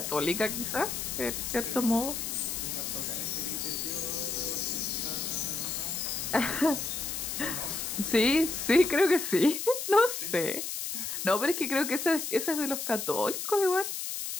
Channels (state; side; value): noise; left; hiss, 4 dB below the sound